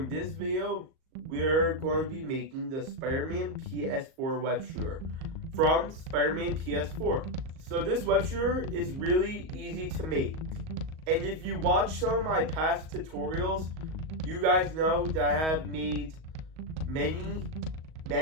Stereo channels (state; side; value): late; left; 38 ms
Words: this video, we're going to be making the Spider-Man ps4 web shooter from Spider-Man ps4. So this web shooter is really easy to make. And if you watch some of my past tutorials, you guys know that I have made many